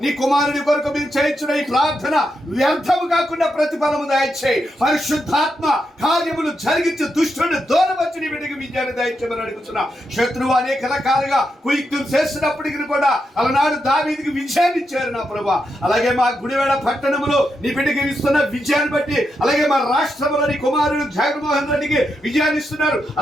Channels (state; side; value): normal; both; correlation 0.84